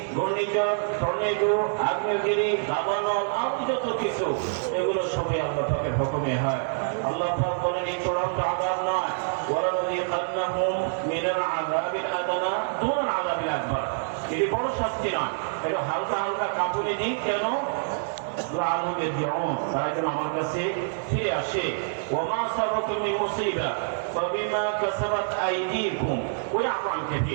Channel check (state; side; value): silent; left; 61 dB below the other